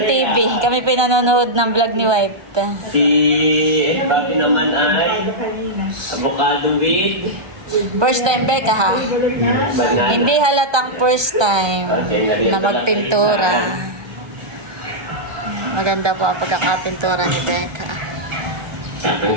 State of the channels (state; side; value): late; left; 1.2 ms